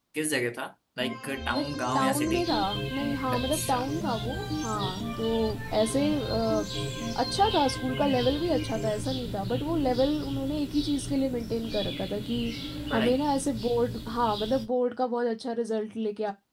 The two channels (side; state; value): both; identical; correlation 1.00